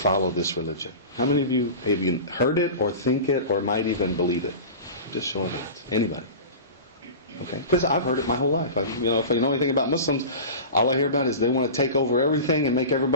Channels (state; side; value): inverted; both; correlation -0.32